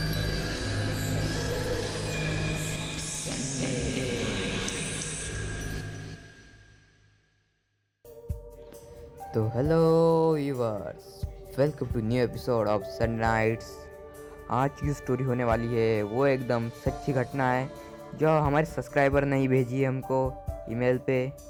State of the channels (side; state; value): both; identical; correlation 1.00